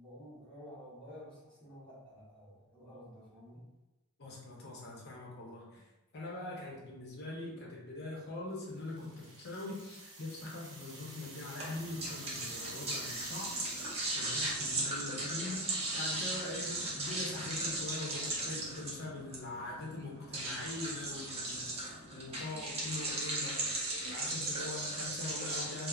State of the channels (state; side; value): normal; both; correlation 0.14